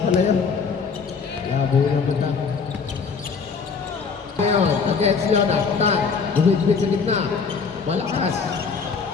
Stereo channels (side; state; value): right; quieter; 5.4 dB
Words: pala yun. Labo yung matang. Ngayon, against Yona. Tahan. Bumit-bit sa gitna. Malakas.